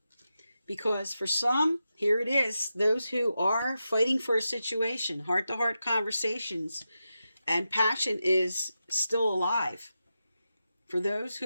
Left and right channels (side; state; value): both; inverted; correlation -0.90